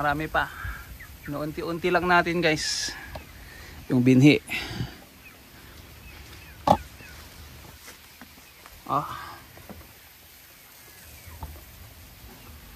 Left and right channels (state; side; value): identical; both; correlation 1.00